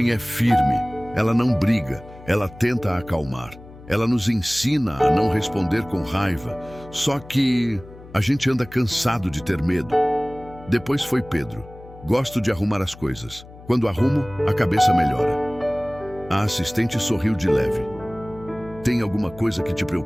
é firme. Ela não briga. Ela tenta acalmar. Ela nos ensina a não responder com raiva. Só que a gente anda cansado de ter medo." Depois foi Pedro. "Gosto de arrumar as coisas. Quando arrumo, a cabeça melhora." A assistente sorriu de leve. "Tem alguma coisa que te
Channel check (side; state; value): left; noise; hum, 19 dB below the sound